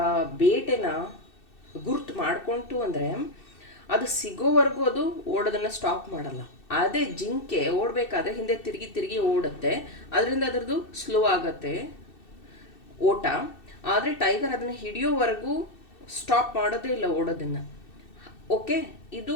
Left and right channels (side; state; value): right; late; 2.7 ms